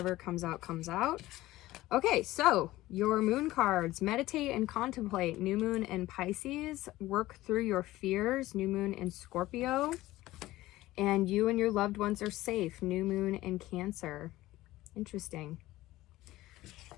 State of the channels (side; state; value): right; quieter; 17.0 dB